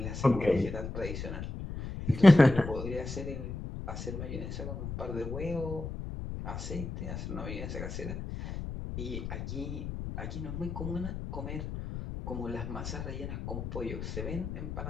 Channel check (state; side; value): noise; left; rumble, 6 dB below the sound